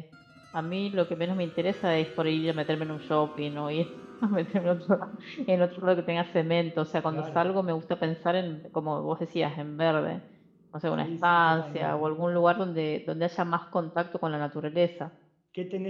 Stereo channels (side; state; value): both; identical; correlation 1.00